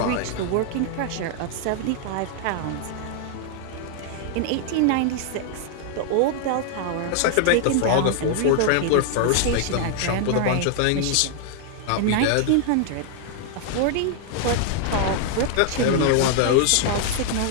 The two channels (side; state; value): both; different; correlation 0.00